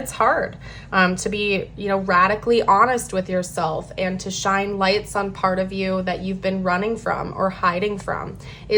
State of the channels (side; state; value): both; identical; correlation 1.00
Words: hard to be, radically honest with yourself, and to shine lights on part of you that you've been running from or hiding from